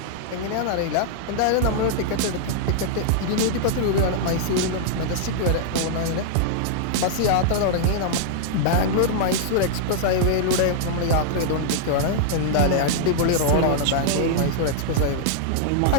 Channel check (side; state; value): both; different; correlation -0.01